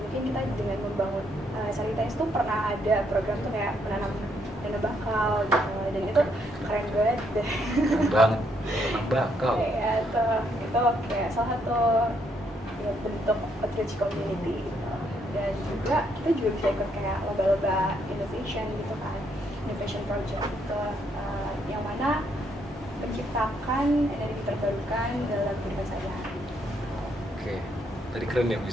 kita dengan membangun Saritas tuh pernah ada program tuh kayak menanam dana bakal gitu, dan itu keren banget deh. Keren banget, menanam bakal. Kayak itu kayak salah satu ya, bentuk outreach community gitu. Dan juga kita juga bisa ikut kayak lomba-lomba innovation gitu kan, innovation project gitu, yang mana menciptakan energi terbarukan dalam kehidupan sehari-hari. Oke, tadi keren ya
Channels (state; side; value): normal; both; correlation 0.73